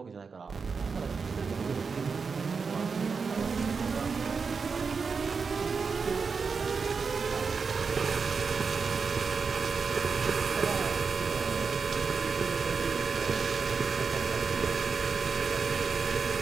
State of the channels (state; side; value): quieter; left; 5.2 dB